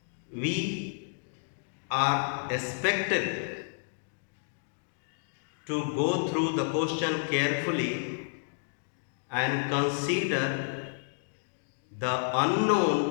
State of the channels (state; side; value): silent; right; digital silence